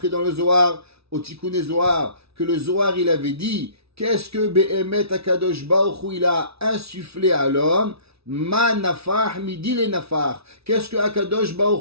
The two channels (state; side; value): late; left; 0.78 ms